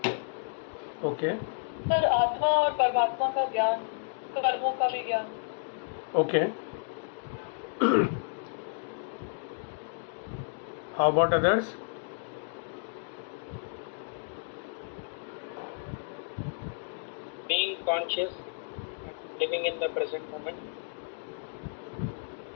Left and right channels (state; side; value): silent; right; digital silence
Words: ओके सर आत्मा और परमात्मा का ज्ञान, कर्मों का भी ज्ञान। Okay how about others? Being conscious, living in the present moment.